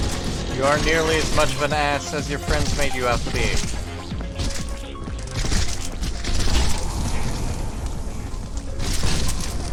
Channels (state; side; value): identical; both; correlation 1.00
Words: You aren't nearly as much of an ass as your friends made you out to be.